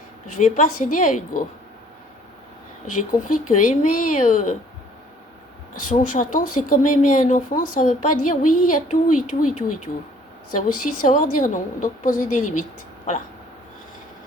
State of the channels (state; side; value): normal; both; correlation 0.58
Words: Je vais pas céder à Hugo. J'ai compris que aimer son chaton, c'est comme aimer un enfant. Ça veut pas dire oui à tout et tout et tout et tout. Ça veut aussi savoir dire non. Donc poser des limites. Voilà.